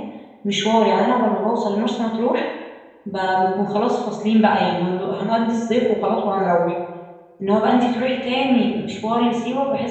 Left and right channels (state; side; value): identical; both; correlation 1.00